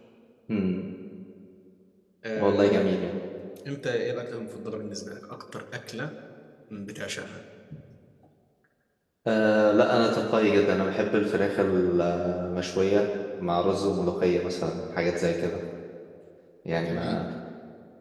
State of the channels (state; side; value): identical; both; correlation 1.00